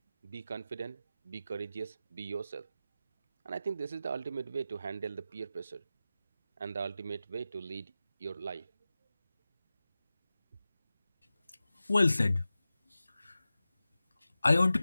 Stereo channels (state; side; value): inverted; both; correlation -0.94